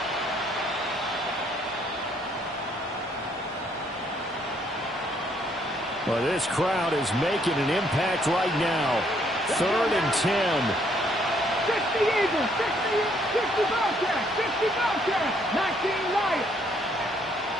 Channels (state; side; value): normal; both; correlation 0.68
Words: Well, this crowd is making an impact right now. 3rd and 10. 60 Eagles, 60 Bobcats, 60 Bobcats, 19 Lions.